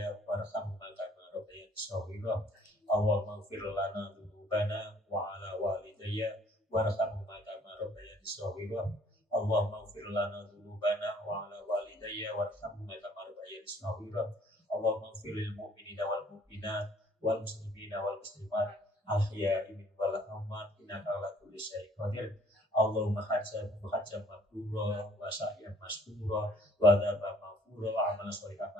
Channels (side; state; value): both; normal; correlation 0.59